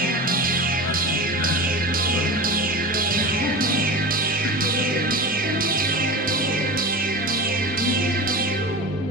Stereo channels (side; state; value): both; normal; correlation 0.28